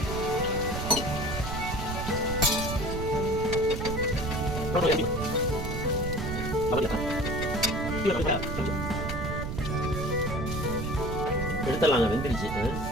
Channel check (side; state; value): right; noise; rumble, 5 dB below the sound